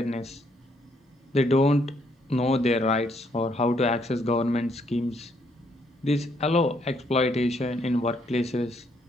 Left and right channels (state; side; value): normal; both; correlation 0.71